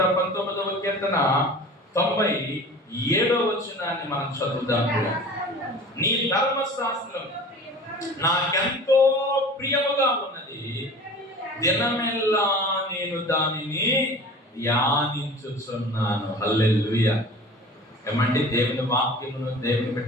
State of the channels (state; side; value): normal; both; correlation 0.40